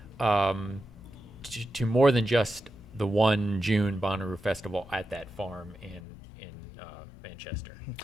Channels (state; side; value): drops out; right; at 6.0 s